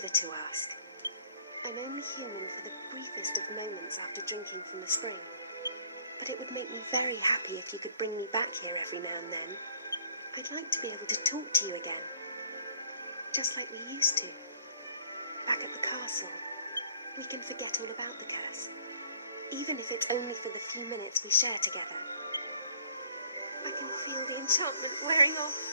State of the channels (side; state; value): both; inverted; correlation -0.58